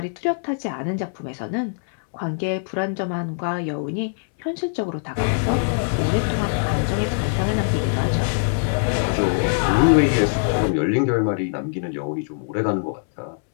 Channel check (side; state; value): right; silent; 64 dB below the other